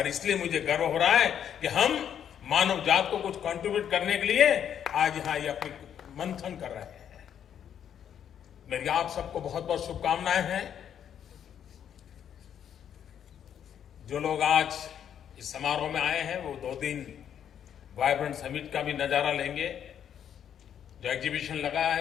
इसलिए मुझे गर्व हो रहा है कि हम मानव जात को कुछ कंट्रीब्यूट करने के लिए आज यहां ये अपनी मंथन कर रहे हैं। मेरी आप सबको बहुत बहुत शुभकामनाएं हैं। जो लोग आज इस समारोह में आए हैं वो 2 दिन वाइब्रेंट समिट का भी नजारा लेंगे, जो एग्जीबिशन लगा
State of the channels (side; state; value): right; quieter; 9.1 dB